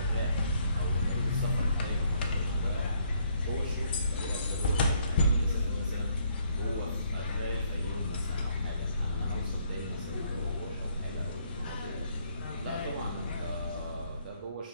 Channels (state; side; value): inverted; both; correlation -0.68